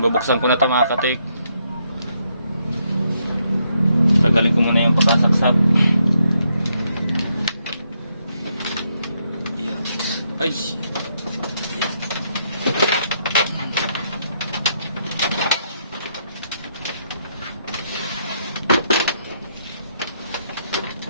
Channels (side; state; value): both; inverted; correlation -0.76